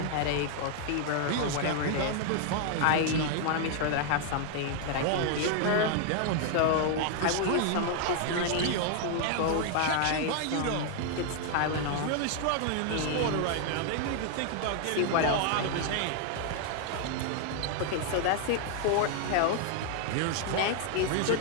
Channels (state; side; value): different; both; correlation 0.00